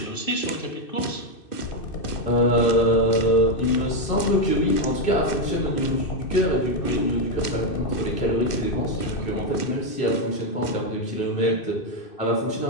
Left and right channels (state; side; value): late; right; 2.6 ms